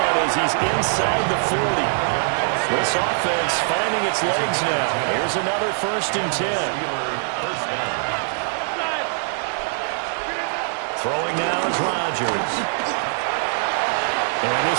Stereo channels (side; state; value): left; silent; 64 dB below the other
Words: as he's inside the 40. This offense finding its legs now. Here's another 1st and 10. Throwing now is Rodgers. And